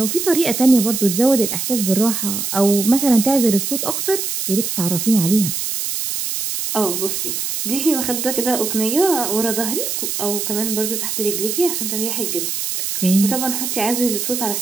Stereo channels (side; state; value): right; noise; hiss, 3 dB below the sound